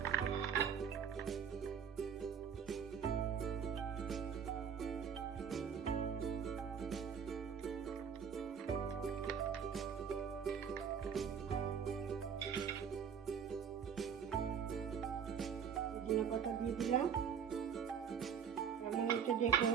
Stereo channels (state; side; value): quieter; left; 7.3 dB